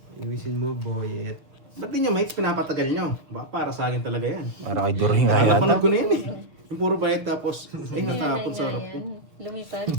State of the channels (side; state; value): left; late; 6.6 ms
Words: Iwisin mo, boy. Ba't di nyo mates pinapatagal nyo? Ba, para sa akin talaga yan. Para kay During. Napanood ko na yun eh. Yung puro bayad tapos, natapon sa harap ko. Lumipad,